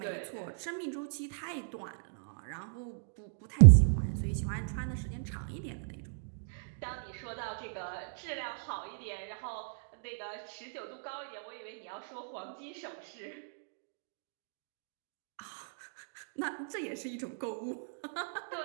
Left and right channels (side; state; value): left; silent; digital silence